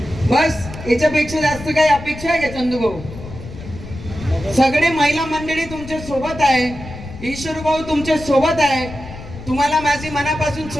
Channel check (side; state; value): left; noise; rumble, 13 dB below the sound